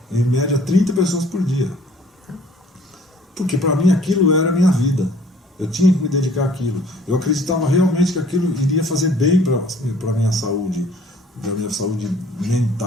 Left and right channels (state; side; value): normal; both; correlation 0.55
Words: em média 30 pessoas por dia. Porque para mim aquilo era a minha vida. Eu tinha que me dedicar àquilo. Eu acreditava realmente que aquilo iria fazer bem para a minha saúde